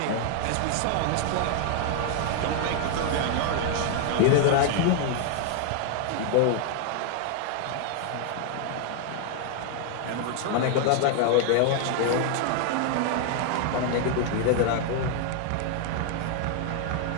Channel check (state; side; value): different; both; correlation 0.00